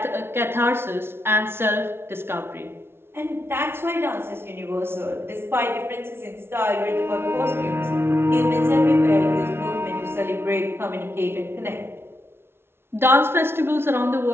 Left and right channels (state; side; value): late; left; 0.12 ms